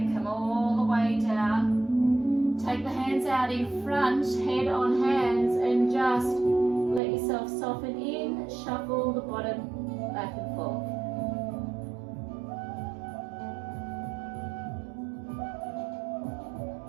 come all the way down. Take the hands out in front, head on hands, and just let yourself soften in, shuffle the bottom back and forth.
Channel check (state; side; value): drops out; left; at 7.0 s